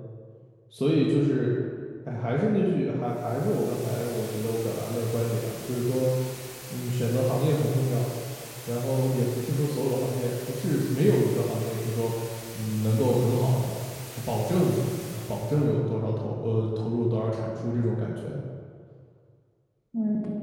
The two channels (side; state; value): both; identical; correlation 1.00